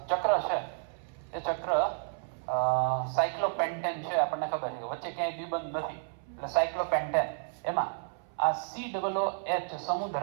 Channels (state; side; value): silent; left; 57 dB below the other